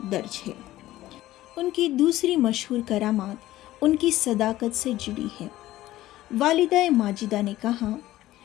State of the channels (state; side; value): quieter; right; 15.4 dB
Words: दर्ज है। उनकी दूसरी मशहूर करामात उनकी सदाकत से जुड़ी है। वालिदा माजिदा ने कहा,